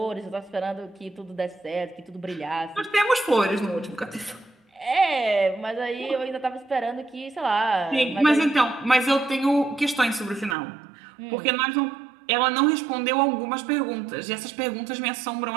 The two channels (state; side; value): drops out; left; at 10.6 s